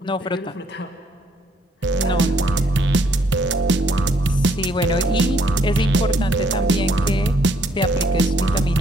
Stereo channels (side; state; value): both; normal; correlation 0.68